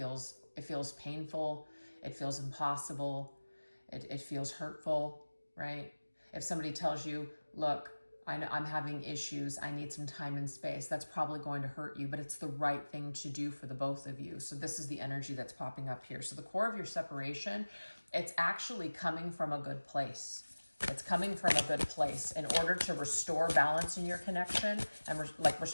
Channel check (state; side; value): inverted; both; correlation -1.00